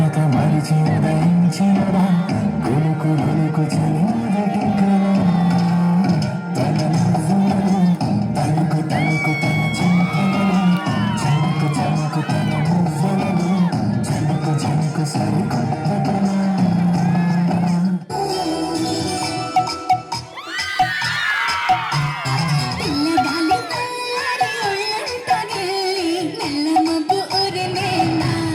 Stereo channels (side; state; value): both; identical; correlation 1.00